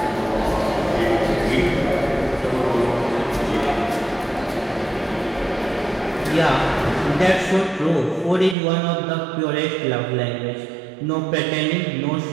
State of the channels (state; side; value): drops out; left; at 8.6 s